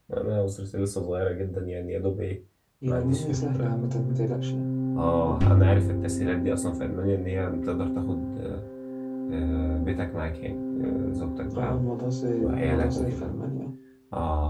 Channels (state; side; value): identical; both; correlation 1.00